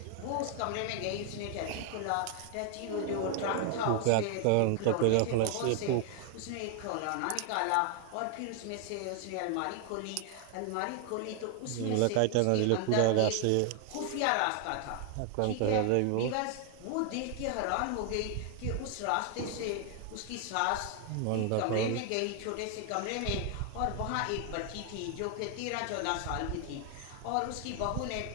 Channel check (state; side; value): different; both; correlation 0.00